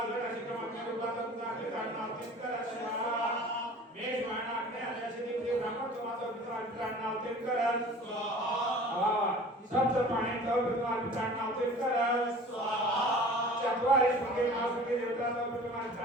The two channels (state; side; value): normal; both; correlation 0.44